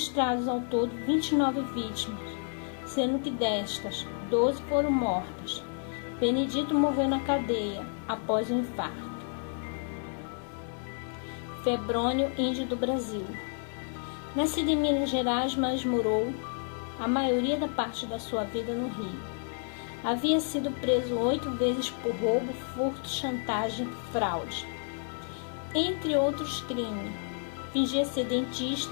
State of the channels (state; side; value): silent; right; 57 dB below the other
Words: ao todo 29 vítimas, sendo que destas, 12 foram mortas. Benedito morreu na cadeia após um infarto. Febrônio, índio do Brasil. Nascido em Minas Gerais, mas morou a maioria da parte da sua vida no Rio. Havia sido preso 8 vezes por roubo, furto, chantagem e fraude, entre outros crimes. Fingia ser